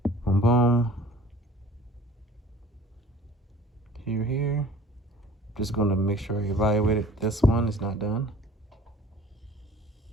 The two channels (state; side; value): normal; both; correlation 0.48